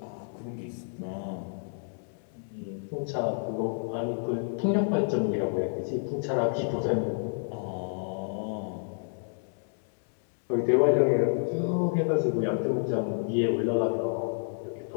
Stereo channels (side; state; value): right; silent; digital silence